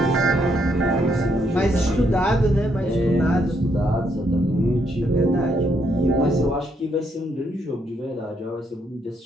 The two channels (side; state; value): both; normal; correlation 0.74